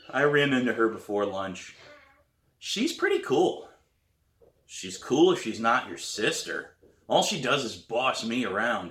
I ran into her before lunch. She's pretty cool." "She's cool if she's not your sister. All she does is boss me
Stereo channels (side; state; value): both; identical; correlation 1.00